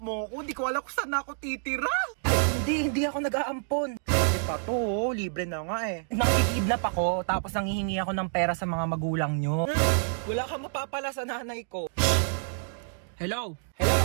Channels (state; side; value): silent; left; digital silence